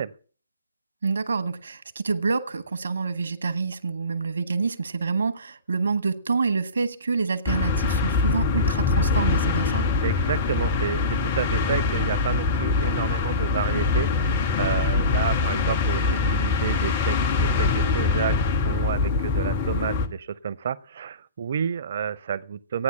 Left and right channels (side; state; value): both; inverted; correlation -0.33